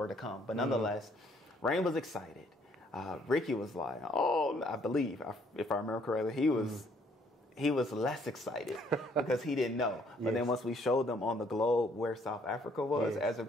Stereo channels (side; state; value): both; normal; correlation 0.65